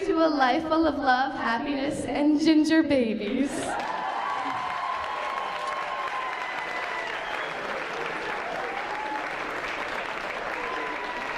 to a life full of love, happiness, and ginger babies.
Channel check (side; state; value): both; identical; correlation 1.00